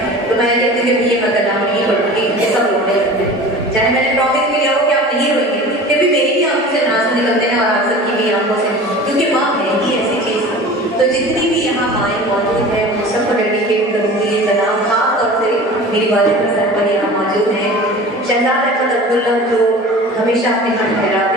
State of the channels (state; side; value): normal; both; correlation 0.39